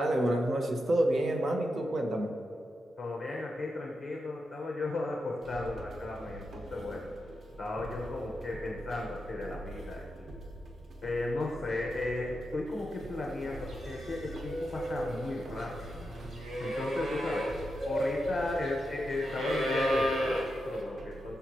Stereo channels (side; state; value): both; normal; correlation 0.87